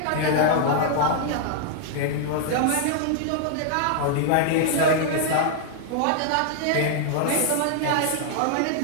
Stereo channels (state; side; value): different; both; correlation -0.01